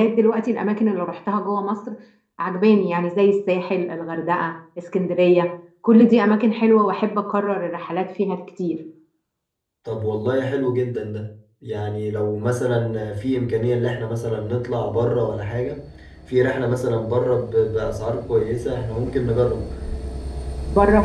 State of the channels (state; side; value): identical; both; correlation 1.00